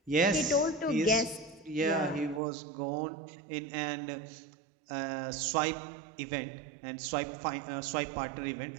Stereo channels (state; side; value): drops out; left; at 2.4 s